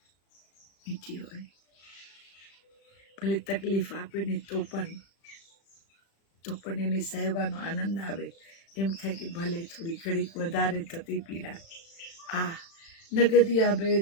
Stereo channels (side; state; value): right; late; 36 ms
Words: ભલે તકલીફ આપે ને તો પણ એને સહેવાનો આનંદ આવે. એમ થાય કે ભલે થોડી ઘડીક વધારે થતી પીડા. नगदिया